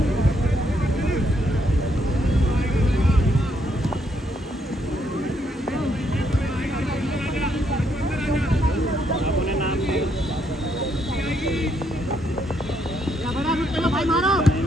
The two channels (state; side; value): normal; both; correlation 0.74